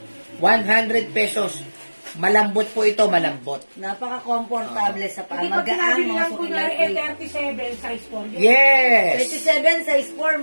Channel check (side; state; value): both; inverted; correlation -1.00